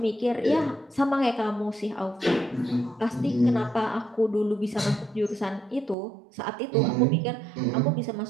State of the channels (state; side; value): drops out; left; at 6.0 s